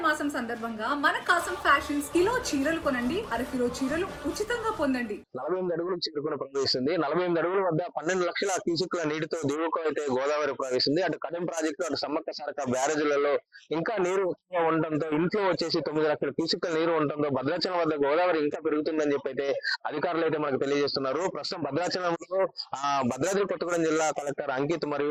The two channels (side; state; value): both; identical; correlation 1.00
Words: మాసం సందర్భంగా మన కాసం ఫ్యాషన్స్ కిలో చీరలు కొనండి, అరకిలో చీరలు ఉచితంగా పొందండి. 48 అడుగులకు చేరుకుని ప్రవహిస్తుంది. 48 అడుగుల వద్ద 12 లక్షల క్యూసెక్ల నీటితో దిగువకు అయితే గోదావరి ప్రవహిస్తుంది. అటు కడెం ప్రాజెక్టు, అటు సమ్మక్క సారక్క బ్యారేజీలలో ఇంకా నీరు ఎక్కువగా ఉండటంతో ఇంట్లో వచ్చేసి 9 లక్షల క్యూసెక్ల నీరు ఉండటంతో భద్రాచలం వద్ద గోదావరి ఇంకా పెరుగుతుందని చెప్పి అయితే అధికారులు అయితే మనకు తెలియజేస్తున్నారు. ప్రస్తుతం భద్రాచలంలో భద్రాద్రి కొత్తగూడెం జిల్లా కలెక్టర్ అంకిత్